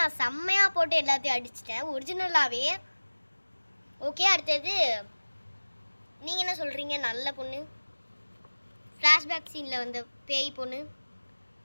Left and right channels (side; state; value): both; inverted; correlation -1.00